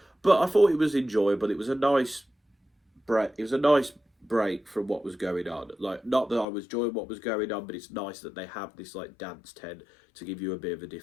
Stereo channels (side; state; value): right; drops out; at 6.5 s